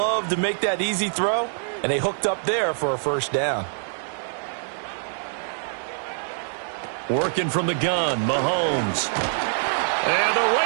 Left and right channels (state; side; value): silent; left; digital silence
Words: to make that easy throw, and they hooked up there for a first down. Working from the gun, Mahomes. And the